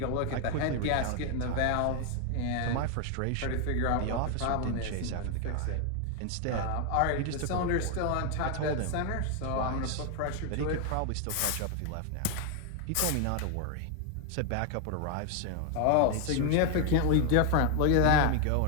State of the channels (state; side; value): different; both; correlation 0.01